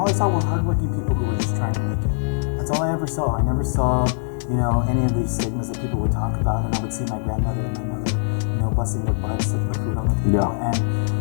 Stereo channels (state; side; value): silent; right; digital silence